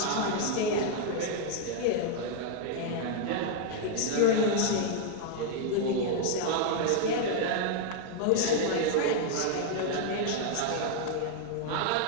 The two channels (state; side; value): different; both; correlation 0.00